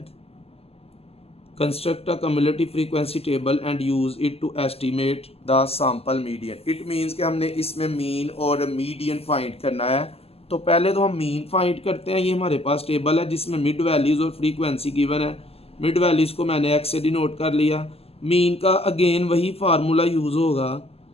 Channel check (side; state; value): right; late; 0.29 ms